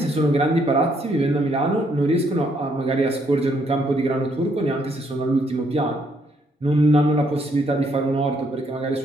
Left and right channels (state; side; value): normal; both; correlation 0.71